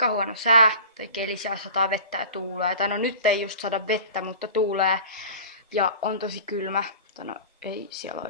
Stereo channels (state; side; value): inverted; both; correlation -0.38